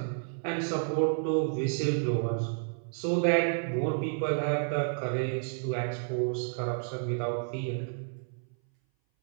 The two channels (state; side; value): silent; left; 57 dB below the other